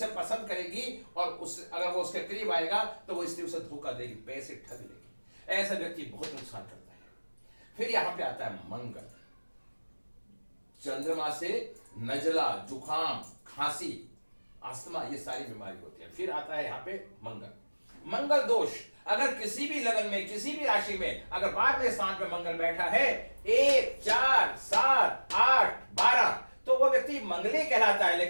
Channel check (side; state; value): both; inverted; correlation -1.00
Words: पसंद करेगी और अगर वो उसके करीब आएगा तो वो स्त्री उसे धोखा देगी, पैसे ठग लेगी, ऐसा व्यक्ति बहुत नुकसान करता है। फिर यहां पे आता है मंगल, चंद्रमा से नजला, जुकाम, खांसी, अस्थमा, ये सारी बीमारी होती है। फिर आता है यहां पे मंगल दोष, अगर किसी भी लगन में, किसी भी राशि में अगर 12वें स्थान पे मंगल बैठा है, 1, 4, 7, 8, 12, तो वो व्यक्ति मंगली कहलाता है।